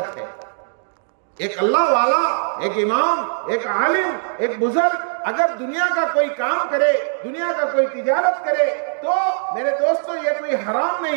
है। एक अल्लाह वाला, एक इमाम, एक आलिम, एक बुजुर्ग अगर दुनिया का कोई काम करे, दुनिया का कोई तिजारत करे, तो मेरे दोस्तों ये कोई हराम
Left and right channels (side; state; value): left; silent; digital silence